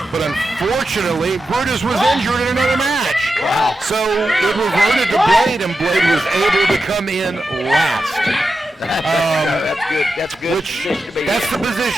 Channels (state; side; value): normal; both; correlation 0.89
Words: But unfortunately, Brutus was injured in another match. Wow. So it reverted to Blade, and Blade was able to come in last. That's good. That's good. That's the